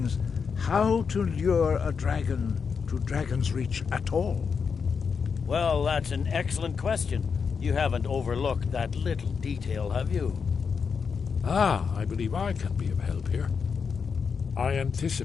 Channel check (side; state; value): right; quieter; 5.9 dB